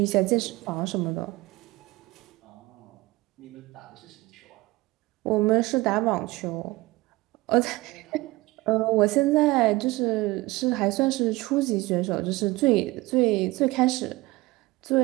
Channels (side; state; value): left; quieter; 20.3 dB